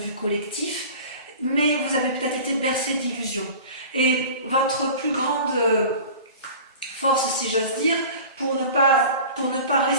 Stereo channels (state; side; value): inverted; both; correlation -0.39